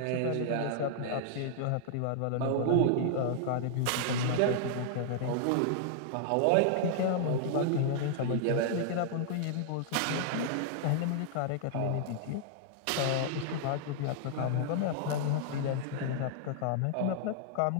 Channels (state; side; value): different; both; correlation -0.01